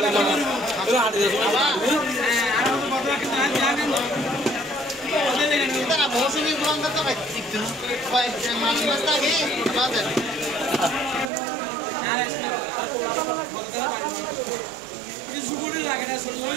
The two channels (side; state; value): left; drops out; at 11.3 s